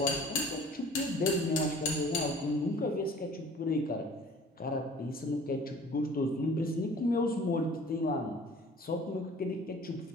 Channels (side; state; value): both; normal; correlation 0.48